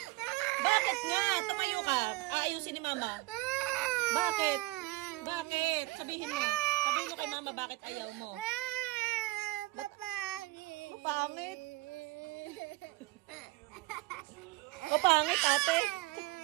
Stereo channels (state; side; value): quieter; left; 20.9 dB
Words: Bakit nga? Tumayo ka. Aayusin ni mama. Bakit? Bakit? Sabihin mo. Sabihin mo kay mama bakit ayaw mo. Mapangit. Mapangit, ate.